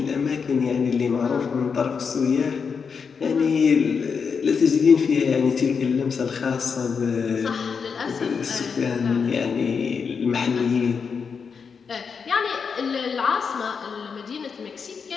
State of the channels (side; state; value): right; quieter; 5.9 dB